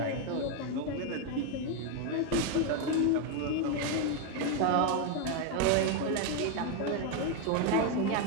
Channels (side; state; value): both; different; correlation 0.01